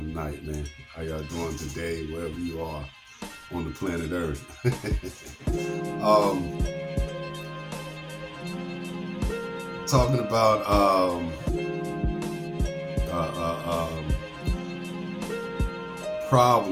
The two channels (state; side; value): identical; both; correlation 1.00